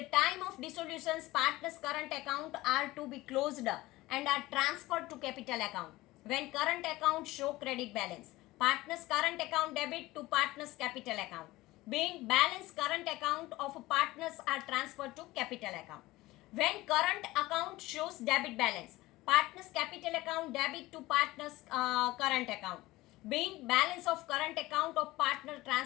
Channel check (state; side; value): quieter; right; 18.8 dB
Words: time of dissolutions, partner's current account are to be closed and are transferred to capital account. When current account show credit balance, partner's current account debit to partner's capital account. Being balance current account of partners are transferred to capital account. When current account shows debit balance, partner's capital account debit to partner's current account. Being balance of current account of partner